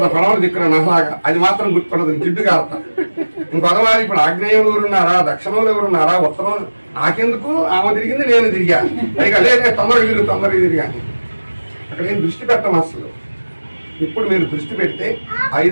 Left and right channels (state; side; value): inverted; both; correlation -1.00